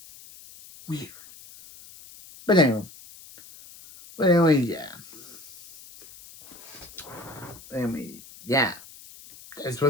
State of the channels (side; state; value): left; noise; hiss, 19 dB below the sound